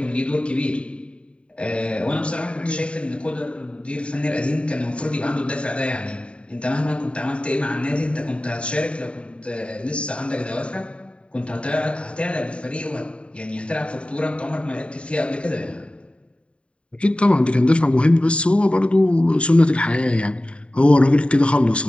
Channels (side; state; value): right; late; 0.059 ms